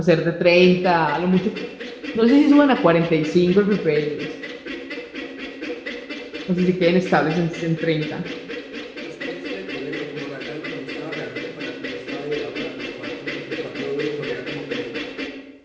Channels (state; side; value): identical; both; correlation 1.00